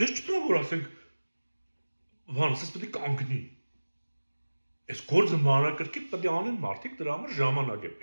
չթվում որ ասենք բան, ասես պետք է կանգնի։ Այս գործը մանրակրկիտ պետք է անեն մարդիկ, դրա համար ժամանակ է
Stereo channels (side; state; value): both; inverted; correlation -1.00